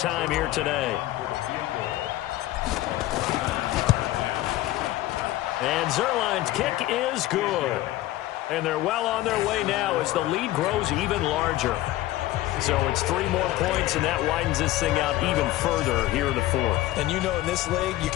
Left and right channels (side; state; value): right; quieter; 15.8 dB